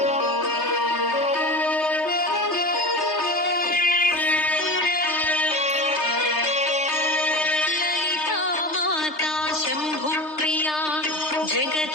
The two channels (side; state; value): right; late; 3.3 ms